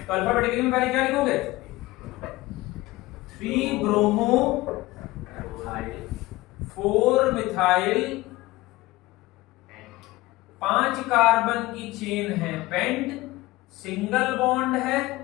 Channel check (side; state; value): right; quieter; 19.4 dB